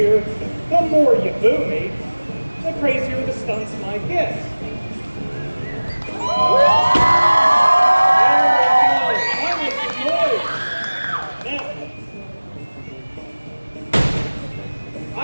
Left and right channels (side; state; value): both; inverted; correlation -1.00